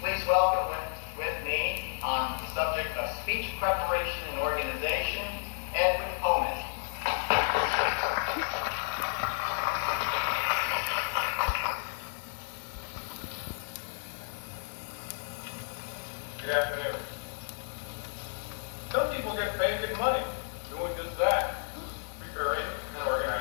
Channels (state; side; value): silent; right; digital silence